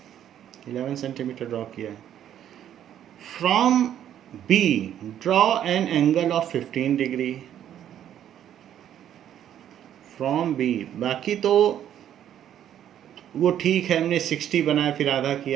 11 centimetre draw किया। From B draw an angle of 15 degree from B। बाकी तो वो ठीक है, हमने 60 बनाया, फिर आधा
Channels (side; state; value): left; quieter; 10.5 dB